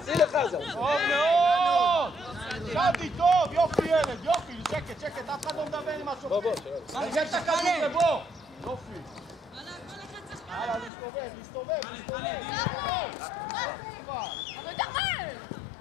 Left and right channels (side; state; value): right; drops out; at 10.9 s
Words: שים לחזן! טוב מאוד! שדי טוב! יופי ילד, יופי! שקט, אף אחד לא מדבר עם משהו. בוא, תרגל את הכדור לבוא! יופי! הלאה, להסתובב!